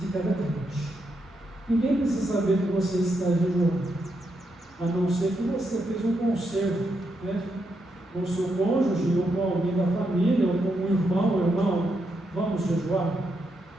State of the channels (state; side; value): normal; both; correlation 0.81